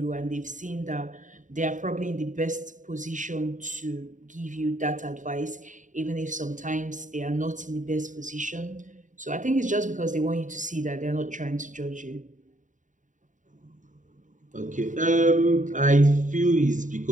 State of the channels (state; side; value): late; left; 0.37 ms